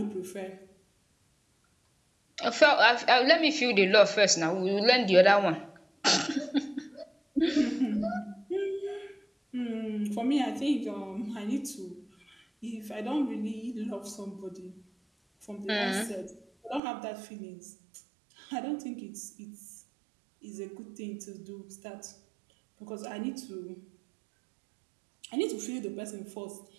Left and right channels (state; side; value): drops out; left; at 16.8 s